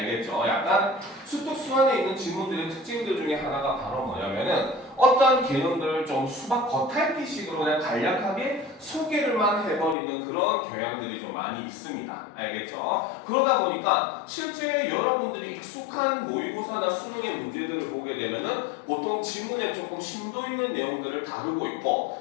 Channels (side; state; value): right; drops out; at 10.0 s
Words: 약간 수특 수완에 있는 지문들의 특징들 중에 하나가 바로 뭐냐면은 어떤 개념들을 좀 수박 겉핥기식으로 그냥 간략하게 소개를만 해버리는 그런 경향들이 좀 많이 있습니다. 알겠죠? 그러다 보니까 실제 여러분들이 익숙한 모의고사나 수능의 문제들을 보게 되면은 보통 지문에 조금 심도 있는 내용들을 다루고